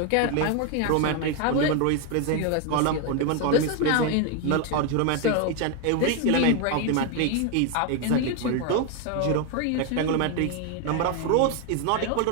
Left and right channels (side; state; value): both; different; correlation 0.01